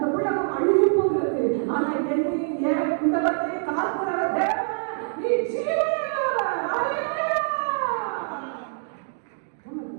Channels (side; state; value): left; silent; digital silence